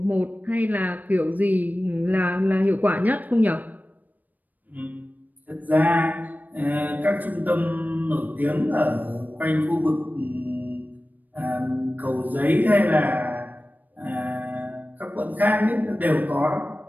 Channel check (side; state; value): left; late; 0.082 ms